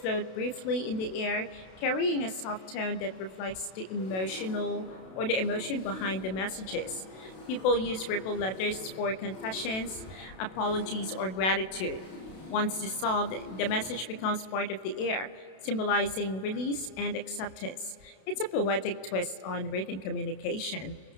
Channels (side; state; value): right; late; 32 ms